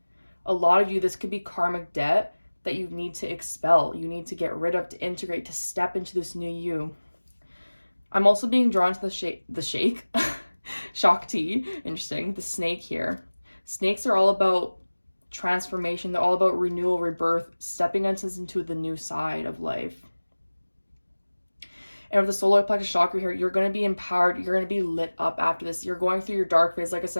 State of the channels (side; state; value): both; inverted; correlation -1.00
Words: A lot of you, this could be karmic debt that you need to expel. You need to get rid of, to integrate, to step into this new you. I'm also being drawn to the shake, Shakti, interesting, the snake here. Snakes are all about transformation. They're all about renewal, rebirth, stepping into the new side of life. And with the solar plexus chakra here, you're going to be empowered. You're going to be lit up after this. You're going through your dark phase, like I